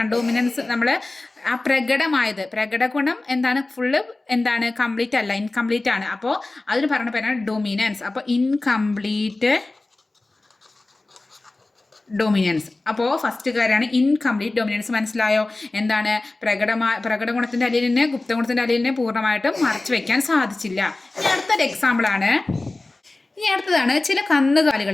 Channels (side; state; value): right; quieter; 3.0 dB